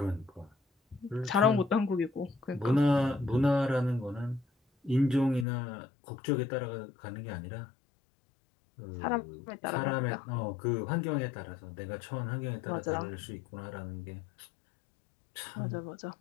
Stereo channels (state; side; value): drops out; right; at 5.5 s